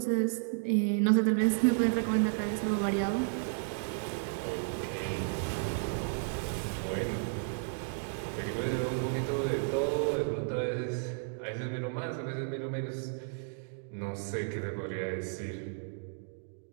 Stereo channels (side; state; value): left; silent; digital silence